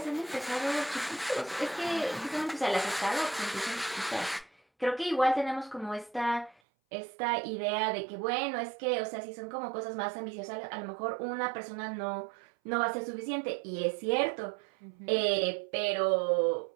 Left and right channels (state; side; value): drops out; left; at 6.6 s